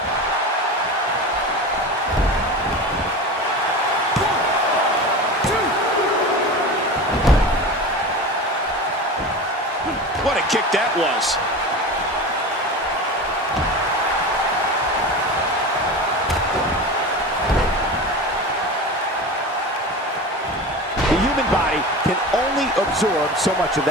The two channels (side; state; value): both; normal; correlation 0.29